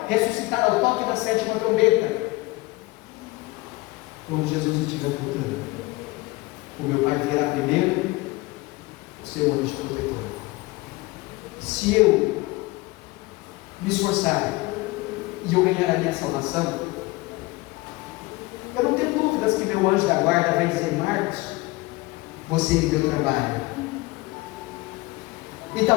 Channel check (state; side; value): quieter; right; 21.7 dB